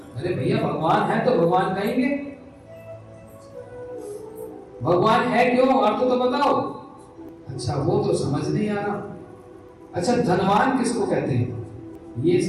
अरे भैया भगवान है तो भगवान कहेंगे, भगवान है क्यों, अर्थ तो बताओ। अच्छा वो तो समझ नहीं आ रहा। अच्छा धनवान किसको कहते हैं? ये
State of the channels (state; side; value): identical; both; correlation 1.00